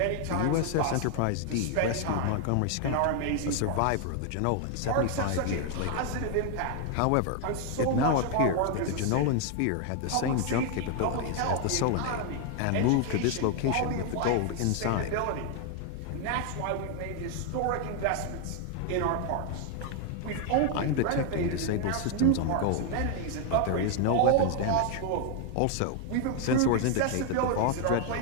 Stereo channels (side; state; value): both; different; correlation 0.00